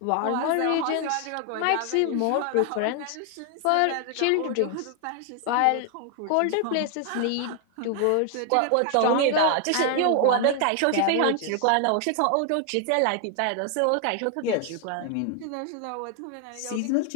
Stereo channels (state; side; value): different; both; correlation 0.00